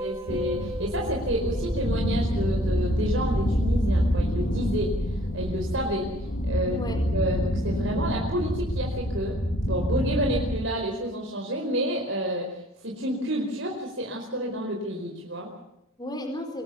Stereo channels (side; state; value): both; normal; correlation 0.55